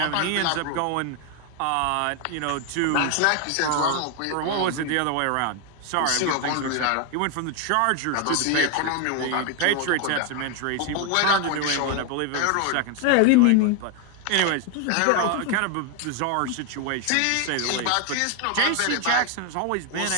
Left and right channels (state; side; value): different; both; correlation 0.01